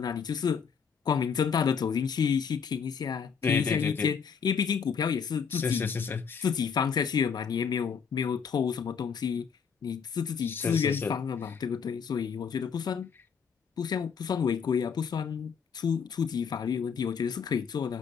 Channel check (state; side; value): quieter; right; 6.6 dB